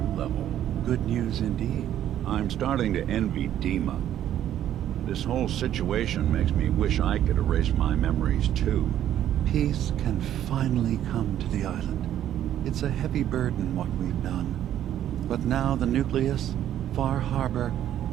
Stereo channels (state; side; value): quieter; left; 11.3 dB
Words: level. Good news indeed. I'm starting to envy DiMA. This whole situation makes me wish I could erase my memories too. Peace can finally come to the island. It's a heavy burden what we've done. But now the Nucleus, Far Harbor,